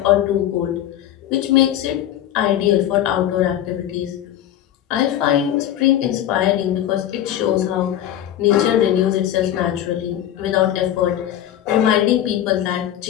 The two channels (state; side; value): quieter; right; 11.7 dB